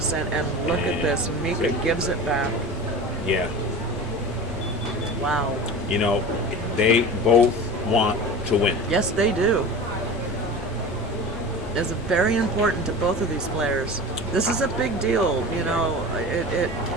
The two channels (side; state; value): both; normal; correlation 0.33